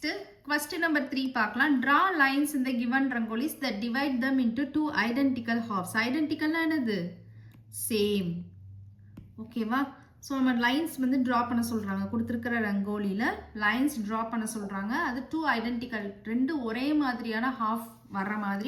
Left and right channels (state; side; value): identical; both; correlation 1.00